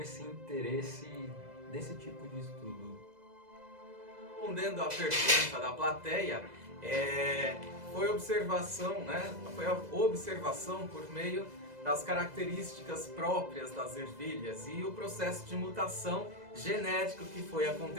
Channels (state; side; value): late; left; 2.0 ms